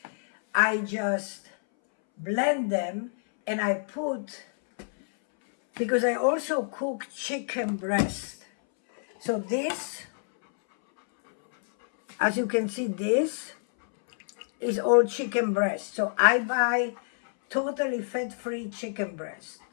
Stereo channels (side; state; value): right; silent; 60 dB below the other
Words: I just blend them, and I put, because I also cook chicken breast. So this, as you can see, this is all chicken breast. So I buy totally fat-free chicken breast,